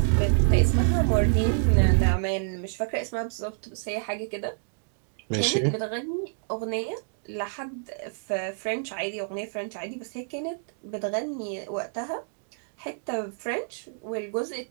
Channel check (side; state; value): left; silent; digital silence